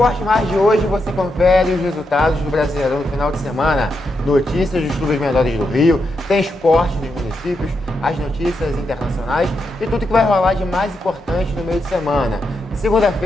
Mais de hoje você confere os resultados do Brasileirão no final de semana, notícias dos clubes menores do Rio, tem esporte dos municípios, as notícias internacionais e tudo que vai rolar de mais importante no meio de semana.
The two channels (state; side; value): normal; both; correlation 0.84